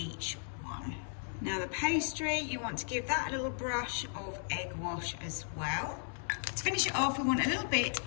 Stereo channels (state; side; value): silent; right; digital silence